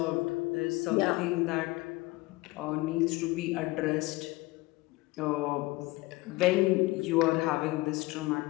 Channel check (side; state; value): right; quieter; 21.6 dB